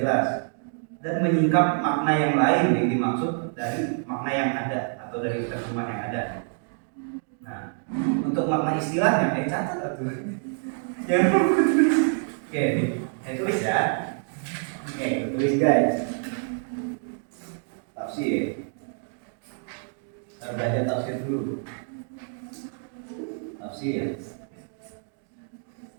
jelas dan menyingkap makna yang lain yang dimaksud dari makna yang ada atau dari terjemah yang ada. Nah, untuk makna istilahnya catat atuh. Jangan oke, saya tulis ya. Oke, tulis guys. Tafsir. Kita belajar tafsir dulu. Tafsir.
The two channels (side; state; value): left; silent; 60 dB below the other